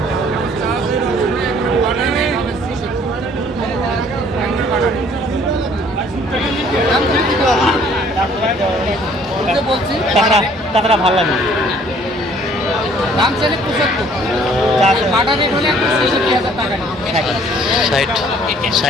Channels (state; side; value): normal; both; correlation 0.57